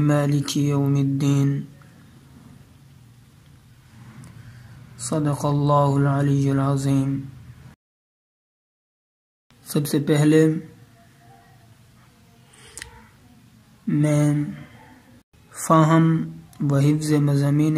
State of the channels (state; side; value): identical; both; correlation 1.00